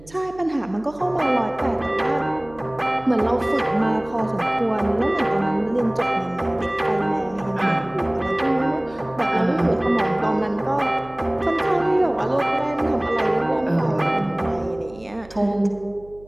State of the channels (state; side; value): noise; right; hum, 22 dB below the sound